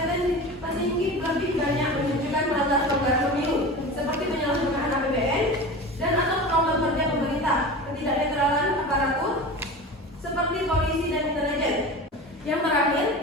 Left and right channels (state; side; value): normal; both; correlation 0.32